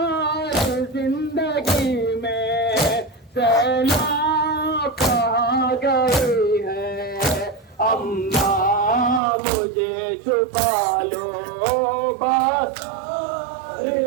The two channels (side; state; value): left; drops out; at 9.2 s